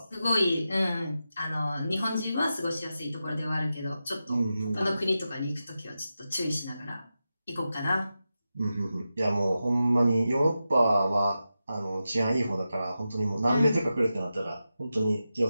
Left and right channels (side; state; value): both; inverted; correlation -0.91